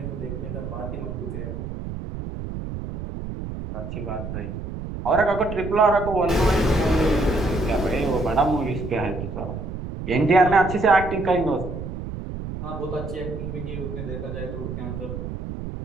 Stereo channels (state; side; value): noise; right; rumble, 7 dB below the sound